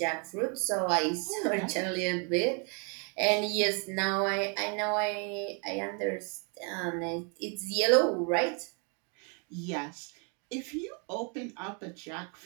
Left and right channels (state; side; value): quieter; left; 36.4 dB